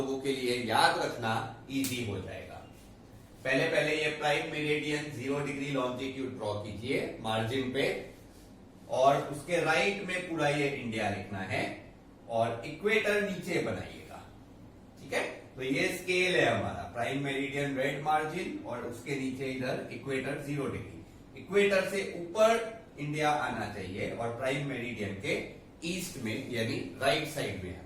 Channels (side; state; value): both; identical; correlation 1.00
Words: के लिए याद रखना इजी हो जाएगा। पहले ये prime meridian 0 degree longitude draw कीजिए मार्जिन पे, और उसके राइट में पूरा ये इंडिया लिखना है और इक्वेटर नीचे बनाइएगा, ठीक है। तो ये स्केल है हमारा, प्राइम मेरिडियन रेड मार्जिन और उसके नीचे इधर इक्वेटर 0 डिग्री। इक्वेटर से ऊपर इंडिया आना चाहिए और प्राइम मेरिडियन के ईस्ट में यानी राइट साइड में